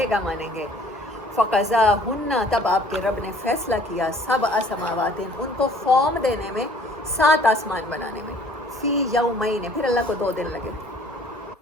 گا مانیں گے۔ فقضاہن، تب آپ کے رب نے فیصلہ کیا، 7 سماوات، ان کو فارم دینے میں، 7 آسمان بنانے میں، فی یومین، پھر اللہ کو 2 دن لگے۔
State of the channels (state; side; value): normal; both; correlation 0.55